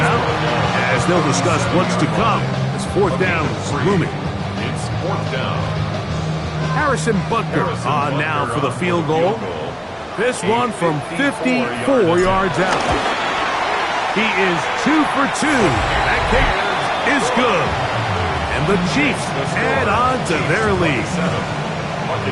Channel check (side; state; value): both; identical; correlation 1.00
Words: as they'll discuss what's to come as fourth down is looming. It's fourth down. Harrison Butker on now for the field goal. This one from 54 yards out. He is 2 for 2. That kick is good. And the Chiefs add on to their lead.